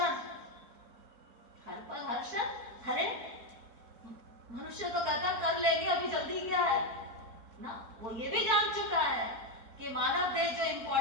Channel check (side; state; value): left; late; 4.5 ms